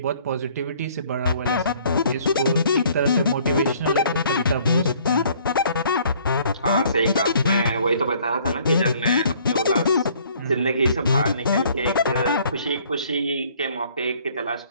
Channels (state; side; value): inverted; both; correlation -0.59